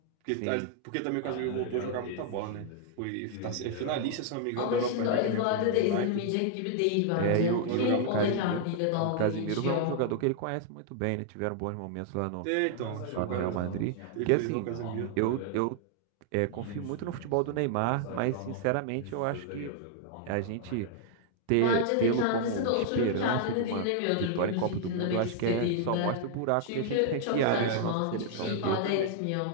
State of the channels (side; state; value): both; different; correlation 0.00